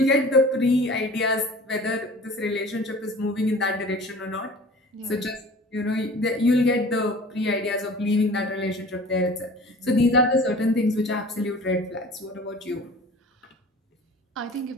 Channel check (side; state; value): both; normal; correlation 0.44